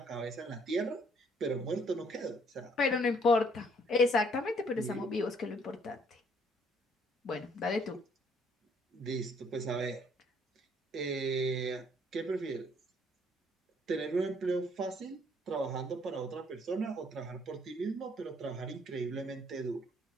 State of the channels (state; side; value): normal; both; correlation 0.64